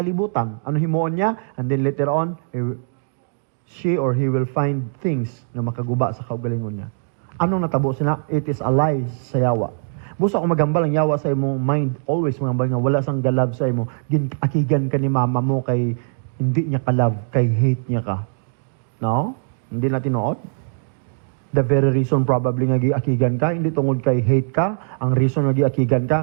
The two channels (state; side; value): silent; left; digital silence